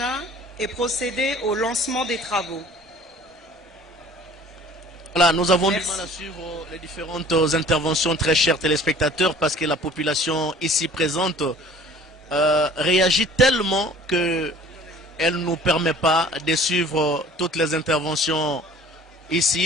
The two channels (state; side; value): normal; both; correlation 0.49